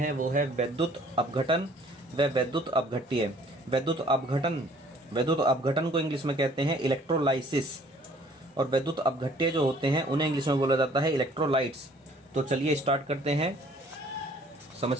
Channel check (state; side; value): normal; both; correlation 0.56